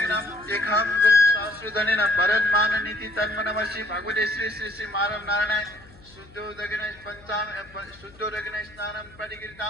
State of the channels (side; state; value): left; noise; hum, 24 dB below the sound